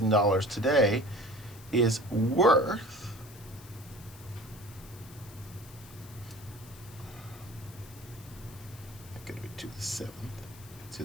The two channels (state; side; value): noise; left; hiss, 20 dB below the sound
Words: today is worth going to be to the seventh,